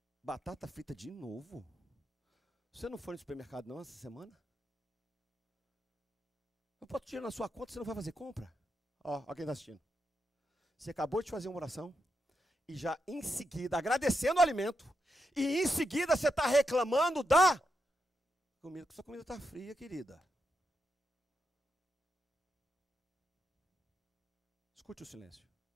batata frita de novo? Você não foi no supermercado não essa semana? Eu boto dinheiro na sua conta, você não vai fazer compra? Ó quem está assistindo. Você acabou de fazer uma oração e já em seguida, agradecendo o alimento, e em seguida você está reclamando da comida, sua comida está fria, querida. Escute o silêncio.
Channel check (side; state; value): both; normal; correlation 0.84